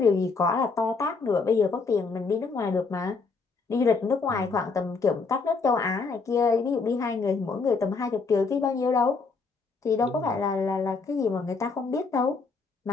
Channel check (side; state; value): right; quieter; 4.5 dB